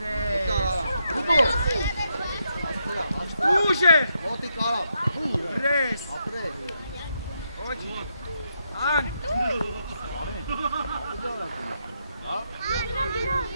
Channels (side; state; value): both; inverted; correlation -0.80